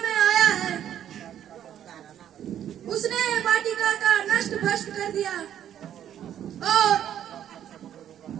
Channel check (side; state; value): left; quieter; 10.4 dB